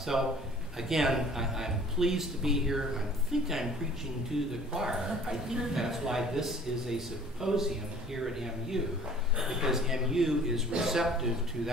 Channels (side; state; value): both; normal; correlation 0.50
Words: again, I'm pleased to be here. I think I'm preaching to the choir. I think that's why this is a symposium here at MU, because MU is receptive to